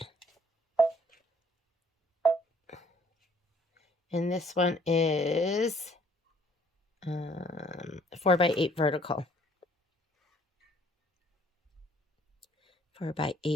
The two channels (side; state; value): both; normal; correlation 0.61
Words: And this one is 4x8 vertical.